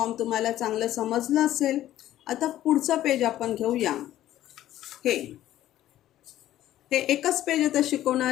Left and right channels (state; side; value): quieter; right; 13.3 dB